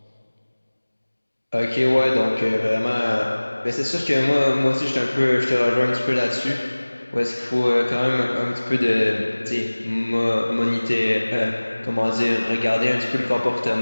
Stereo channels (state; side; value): inverted; both; correlation -1.00